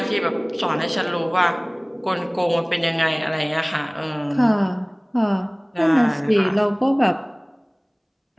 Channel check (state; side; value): identical; both; correlation 1.00